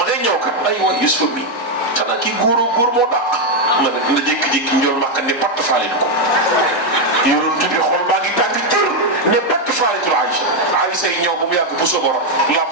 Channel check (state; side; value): late; right; 4.1 ms